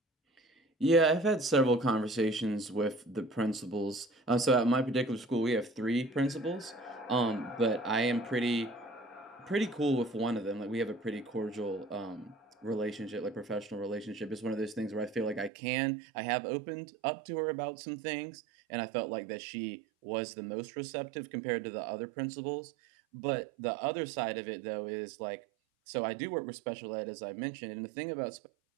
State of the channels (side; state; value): left; drops out; at 15.5 s